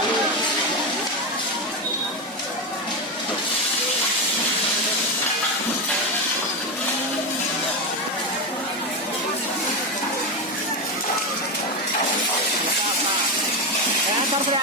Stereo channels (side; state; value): both; normal; correlation 0.13